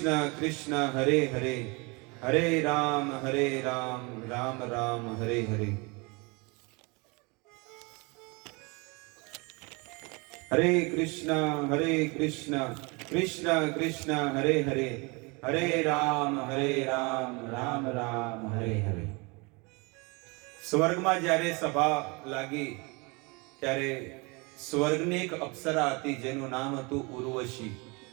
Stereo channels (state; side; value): quieter; left; 28.7 dB